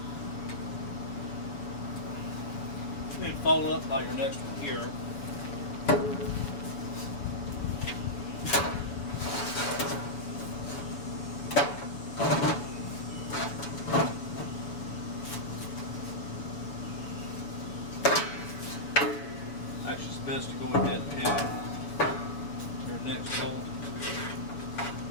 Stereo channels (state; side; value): late; right; 7.1 ms